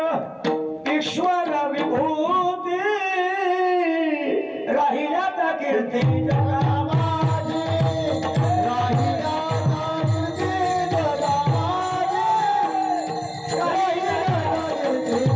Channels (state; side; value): identical; both; correlation 1.00